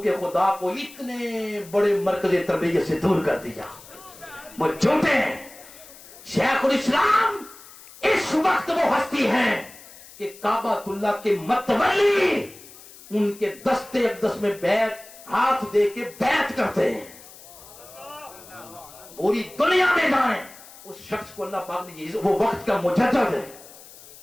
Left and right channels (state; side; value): noise; left; hiss, 20 dB below the sound